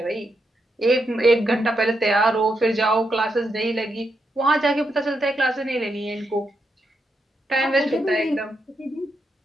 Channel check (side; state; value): both; normal; correlation 0.82